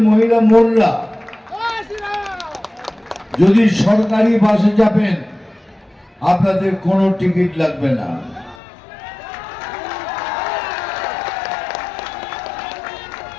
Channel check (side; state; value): right; drops out; at 8.6 s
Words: মহিলা বোনরা যদি সরকারি বাসে যাবেন আপনাদের কোনো টিকিট লাগবে না।